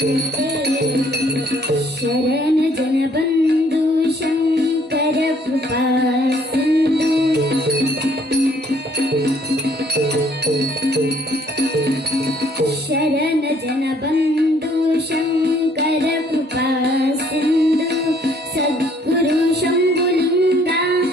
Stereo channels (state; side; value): normal; both; correlation 0.62